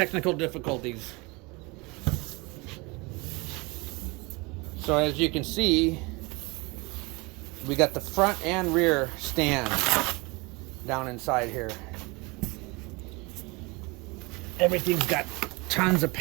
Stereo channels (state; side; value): quieter; left; 26.2 dB